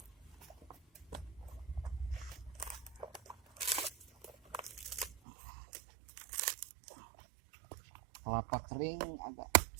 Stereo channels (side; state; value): left; drops out; at 5.2 s